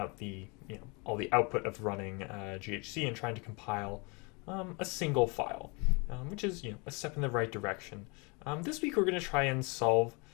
the all the output of running GHC and trying to compile a single file, which is a step in the right direction. This week we're going to try and solve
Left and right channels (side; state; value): right; quieter; 30.2 dB